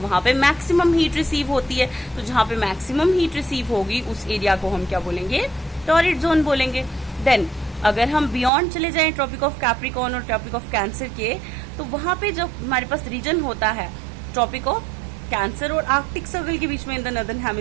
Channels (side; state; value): left; drops out; at 8.5 s